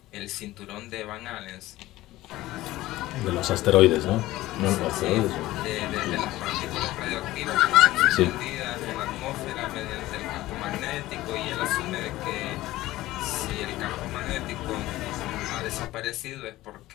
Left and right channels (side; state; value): right; quieter; 16.8 dB